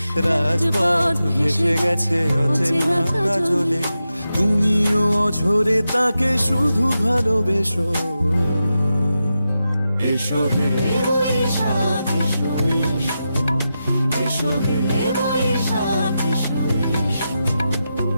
রাজপথ ভেসে গেছে অচেনা কাজলে। তুমিও অঝরে তাকে শুধু ভালোবেসো, এসো হে বৈশাখ এসো এসো, এসো হে বৈশাখ এসো এসো।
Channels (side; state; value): both; inverted; correlation -0.89